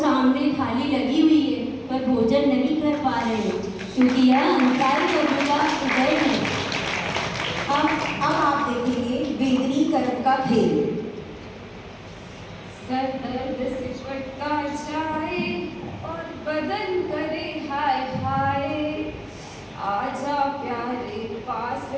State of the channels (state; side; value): identical; both; correlation 1.00